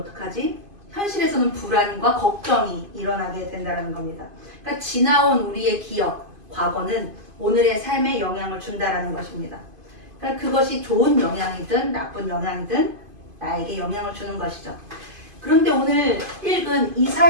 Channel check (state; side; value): late; left; 2.5 ms